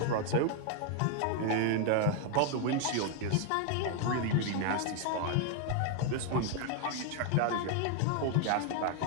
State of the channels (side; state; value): both; different; correlation 0.00